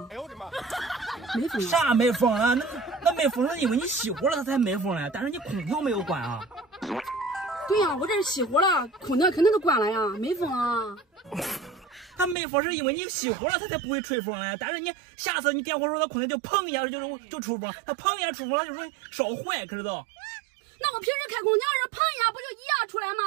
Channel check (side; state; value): left; drops out; at 12.4 s